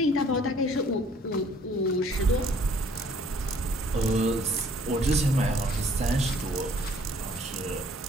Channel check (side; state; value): both; normal; correlation 0.58